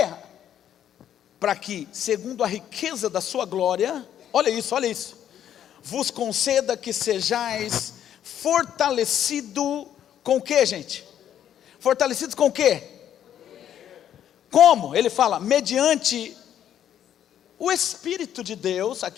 Para que, segundo a riqueza da sua glória, olha isso, vos conceda que sejais fortalecido com o que, gente? Fortalecidos com o quê? Como? Ele fala, mediante o Espírito de Deus.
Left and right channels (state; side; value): quieter; right; 10.3 dB